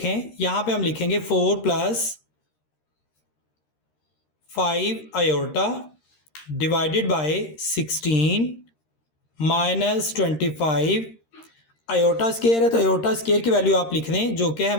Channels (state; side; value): late; right; 13 ms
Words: यहाँ पे हम लिखेंगे 4 + 5 iota divided by 16 minus 25 iota square है, तो आयोटा स्क्वायर की वैल्यू आप लिख दें जो कि है